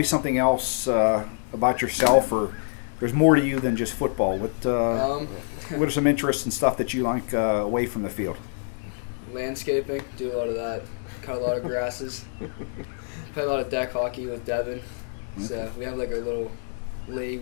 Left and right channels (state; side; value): silent; right; 61 dB below the other